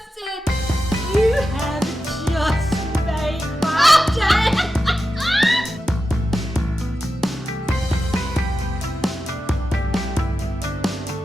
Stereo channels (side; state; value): both; normal; correlation 0.90